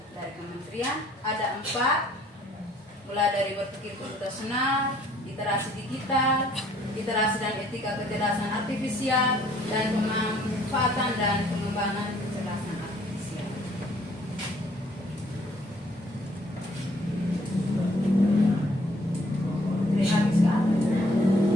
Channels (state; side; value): normal; both; correlation 0.61